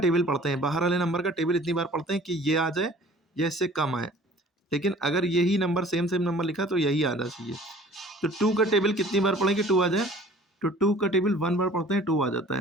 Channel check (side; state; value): both; normal; correlation 0.49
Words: पढ़ते हैं, बाहर वाले नंबर का टेबल इतनी बार पढ़ते हैं कि ये आ जाए या इससे कम आए। लेकिन अगर यही नंबर सेम नंबर लिखा तो यही आना चाहिए। तो 2 का टेबल कितनी बार पढ़ेंगे 2 आ जाए? तो 2 का टेबल 1 बार पढ़ते हैं 2 आ जाता